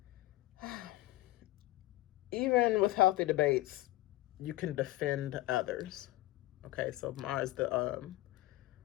Even with healthy debates, you can defend others. Okay, so Mars,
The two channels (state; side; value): quieter; right; 17.6 dB